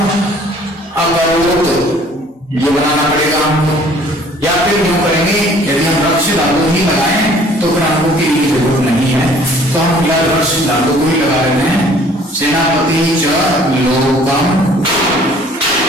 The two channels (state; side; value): normal; both; correlation 0.55